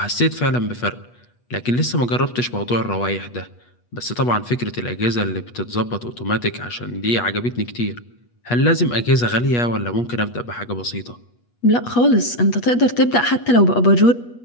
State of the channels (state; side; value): late; right; 8.3 ms